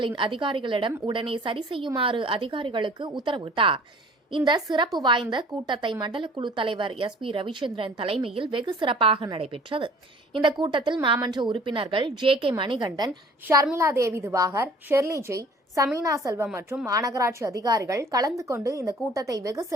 அதிகாரிகளிடம் உடனே சரி செய்யுமாறு அதிகாரிகளுக்கு உத்தரவிட்டார். இந்த சிறப்பு வாய்ந்த கூட்டத்தை மண்டல குழு தலைவர் SP ரவிச்சந்திரன் தலைமையில் வெகு சிறப்பாக நடைபெற்றது. இந்த கூட்டத்தில் மாமன்ற உறுப்பினர்கள் JK மணிகண்டன், ஷர்மிளா தேவி திவாகர், ஷெர்லி ஜெய், சமீனா செல்வம் மற்றும் மாநகராட்சி அதிகாரிகள் கலந்து கொண்டு இந்த கூட்டத்தை வெகு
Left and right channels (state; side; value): normal; both; correlation 0.50